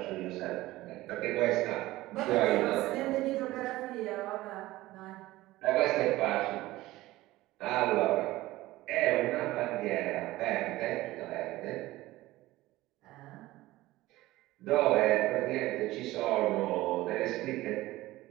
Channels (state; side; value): quieter; left; 17.6 dB